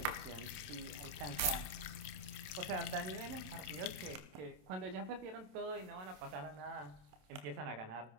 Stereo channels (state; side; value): late; left; 27 ms